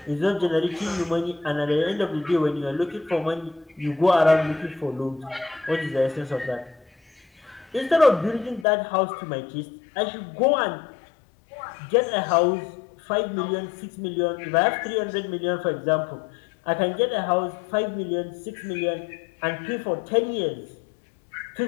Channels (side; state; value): right; drops out; at 8.7 s